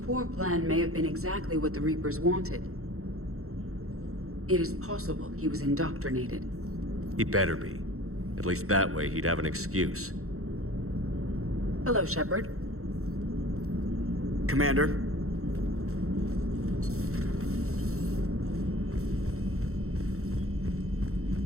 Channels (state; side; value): late; left; 0.63 ms